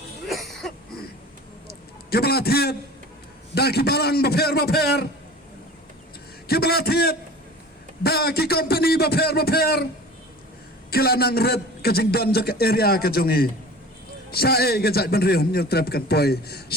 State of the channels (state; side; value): normal; both; correlation 0.40